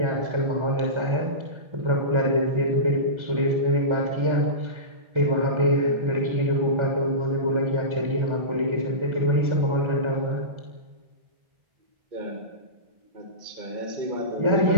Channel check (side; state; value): left; late; 1.4 ms